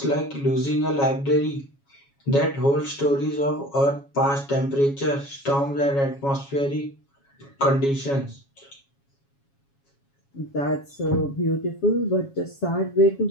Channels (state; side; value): late; right; 7.2 ms